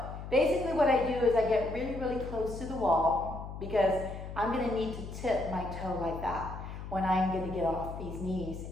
basically what I do is I get really, really close to the wall because I'm gonna need to tip my toe like that when I'm gonna get off these knees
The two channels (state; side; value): noise; left; hum, 9 dB below the sound